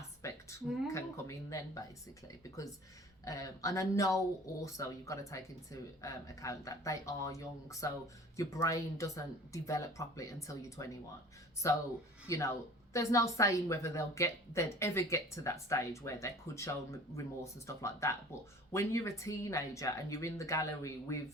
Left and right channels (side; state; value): both; normal; correlation 0.45